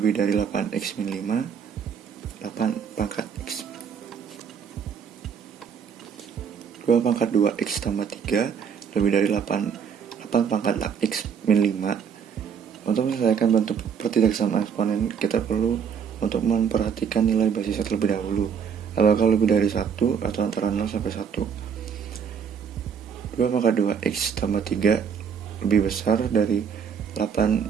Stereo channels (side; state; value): left; quieter; 7.0 dB